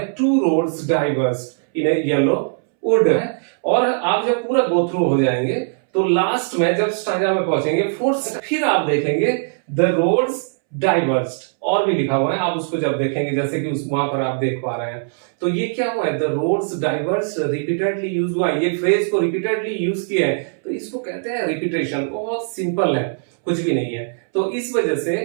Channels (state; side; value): silent; left; 66 dB below the other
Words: two roads diverged in a yellow would है। और आप जब पूरा गो थ्रू हो जाएंगे तो लास्ट में जब स्टैंजा में पहुंचेंगे फोर्थ, फिर आप देखेंगे द रोड्स डाइवर्ज्ड, और भी लिखा हुआ है, आप उसको जब देखेंगे जैसे कि उस वहां पर आप देख पा रहे हैं, तो ये क्या हुआ है, द रोड्स डाइवर्ज्ड रिपीटेडली यूज हुआ है, ये फ्रेज को रिपीटेडली यूज किया है, तो इसको कहते हैं रिपीटेशन। बहुत सिंपल है, कुछ भी नहीं है। तो इस वजह से